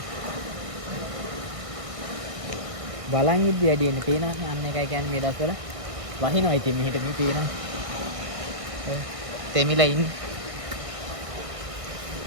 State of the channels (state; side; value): late; left; 1.6 ms